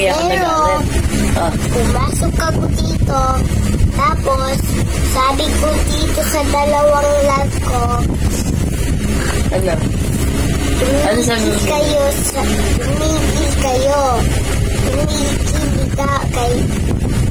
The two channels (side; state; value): both; identical; correlation 1.00